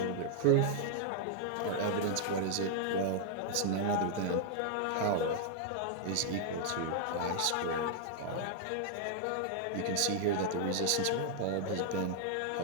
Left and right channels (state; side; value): different; both; correlation -0.01